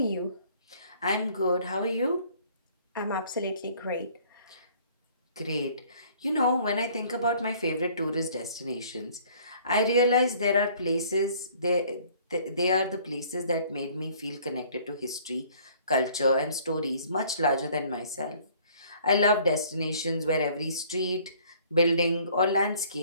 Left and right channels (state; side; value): inverted; both; correlation -0.56